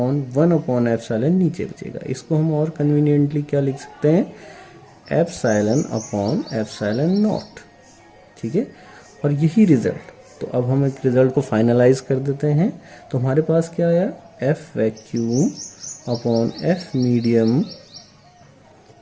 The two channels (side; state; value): both; identical; correlation 1.00